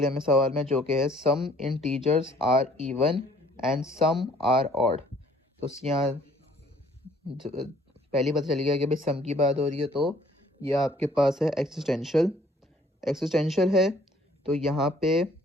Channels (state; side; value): normal; both; correlation 0.59